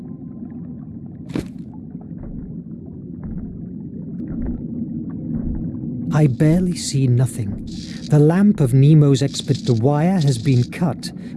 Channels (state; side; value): identical; both; correlation 1.00